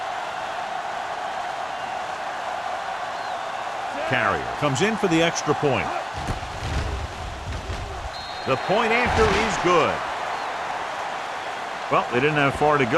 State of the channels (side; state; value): both; identical; correlation 1.00